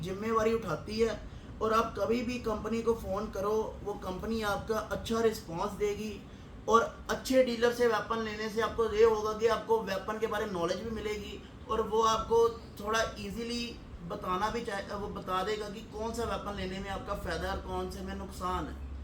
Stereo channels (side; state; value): both; identical; correlation 1.00